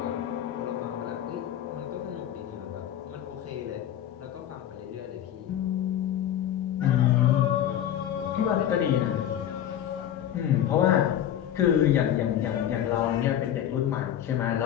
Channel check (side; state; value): right; quieter; 10.8 dB